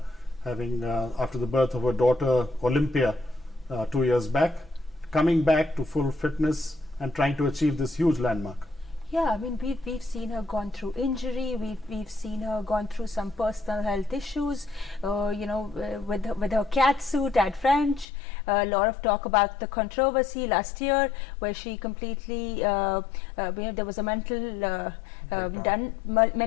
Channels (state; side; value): drops out; right; at 18.1 s